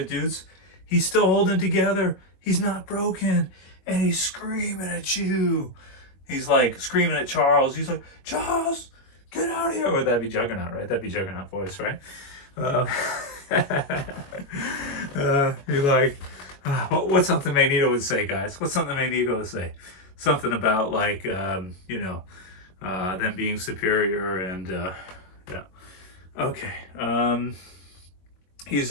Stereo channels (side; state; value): right; late; 22 ms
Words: dudes. He's still holding together. He's not broken. And he's screaming at you. He's like screaming at Charles. He's like, Charles, Get out of here. Would that be Juggernaut, right? That'd be Juggernaut voice, right? Uh, you're like, what's something Magneto would say, guys? What's something Magneto would say? Something about like, you know, them being superior and yeah. Okay. He's